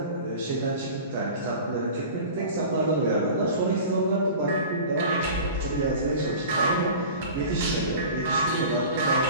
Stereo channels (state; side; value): inverted; both; correlation -0.38